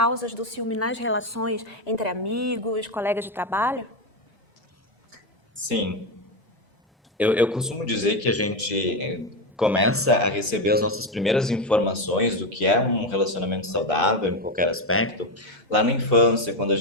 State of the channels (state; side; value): normal; both; correlation 0.11